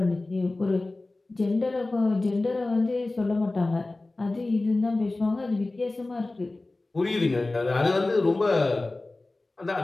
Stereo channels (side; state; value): right; quieter; 3.0 dB